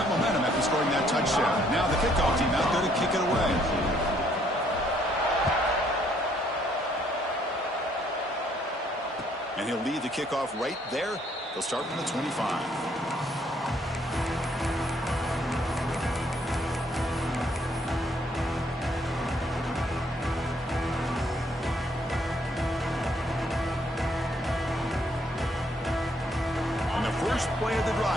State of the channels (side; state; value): both; normal; correlation 0.67